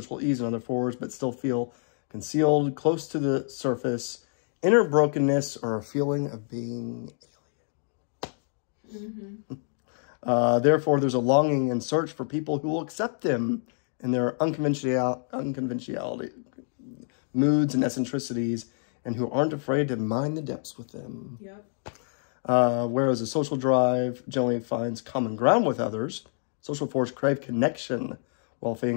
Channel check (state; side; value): silent; right; digital silence